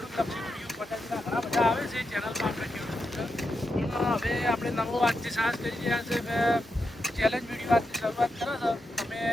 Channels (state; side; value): normal; both; correlation 0.86